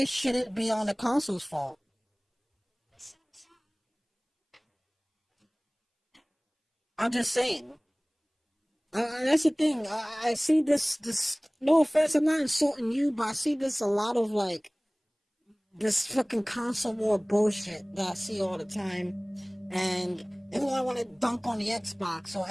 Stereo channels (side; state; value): both; identical; correlation 1.00